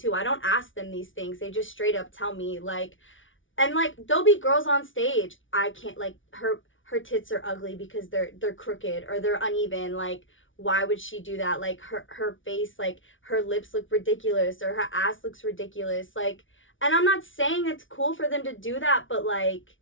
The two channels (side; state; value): right; late; 0.56 ms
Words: I don't ask them these things. They just straight up tell me, like, and like, there'll be girls on stage, I can't, like, her tits are ugly because they're crooked or they're uneven. Like, why would she do that? Like, her face, like, her lips look ridiculous or her ass looks ridiculous. Like, and I'm not saying it's cool for them to do that, but, like,